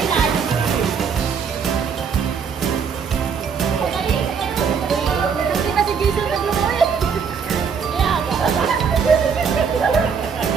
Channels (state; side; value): quieter; left; 6.4 dB